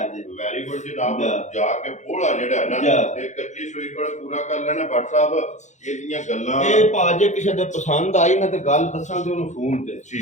ਜੇ ਵੈਰੀ ਗੁੱਡ ਜਨਾਬ ਜਾ। ਜਾ ਕੇ ਬੋਲਾ ਜਿਹੜਾ ਹੈ ਨਾ ਜਾ। ਇਹ ਕੱਚੀ ਸੂਈ ਕੋਲ ਪੂਰਾ ਕਰ ਲੈਣਾ ਭੱਟ ਸਾਹਿਬ ਇਹਦੀਆਂ ਗੱਲਾਂ ਇਹ ਭਾਜੇ ਕਿਸੇ ਦੇ ਪਸੰਦ ਆਈ ਨਾ ਤੇ ਗੱਲ ਦੱਸਾਂ ਤੇ ਉਹਨੂੰ ਫੋਨ ਤੇ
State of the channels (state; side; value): late; right; 0.34 ms